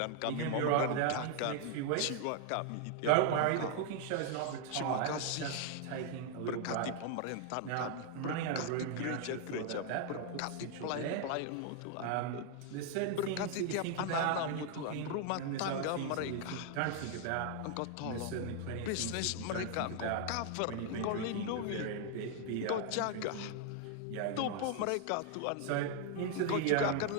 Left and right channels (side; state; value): both; different; correlation 0.00